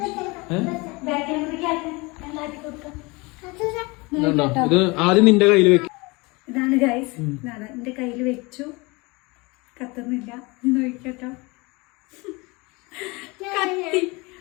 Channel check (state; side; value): quieter; right; 25.8 dB